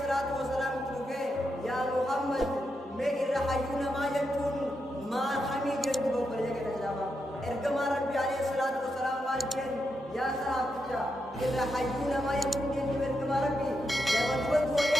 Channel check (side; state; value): both; normal; correlation 0.85